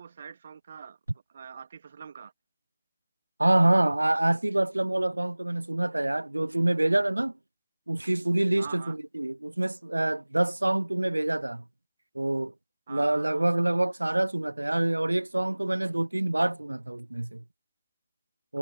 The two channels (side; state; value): both; inverted; correlation -1.00